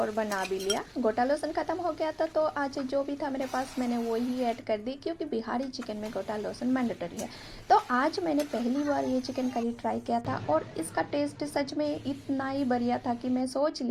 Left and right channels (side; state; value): both; identical; correlation 1.00